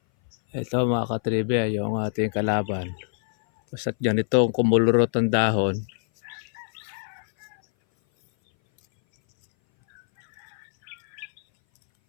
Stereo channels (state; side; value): silent; right; 59 dB below the other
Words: Ito mga katribya, yung ating kalaban. Basta't ganitong kumulurot ang dahon,